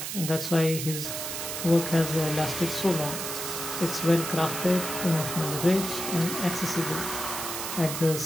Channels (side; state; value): right; noise; hiss, 5 dB below the sound